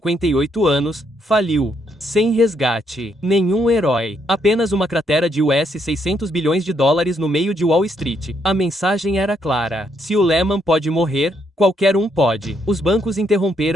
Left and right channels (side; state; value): both; normal; correlation 0.74